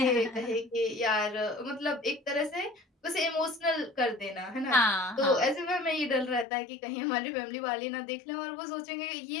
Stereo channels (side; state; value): right; drops out; at 6.5 s